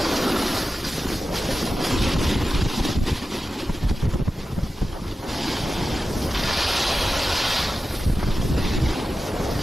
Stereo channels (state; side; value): normal; both; correlation 0.93